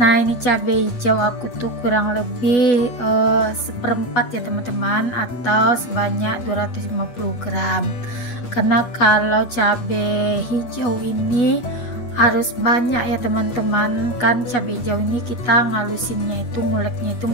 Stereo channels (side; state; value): right; late; 8.2 ms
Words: ini cabai hijau aku tuh kurang lebih seperempat ya teman-teman, atau sebanyak 250 gram. Karena kalau cabai hijau ini harus banyak ya teman-teman, kan cabai hijau ini kita ngalusinnya itu, nguleknya itu